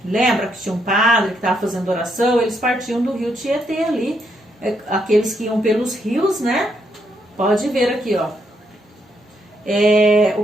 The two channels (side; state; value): both; normal; correlation 0.76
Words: Lembra que tinha um padre que estava fazendo oração? Eles partiam do rio Tietê ali. Aqueles que iam pelos rios, né? Pode ver aqui, ó.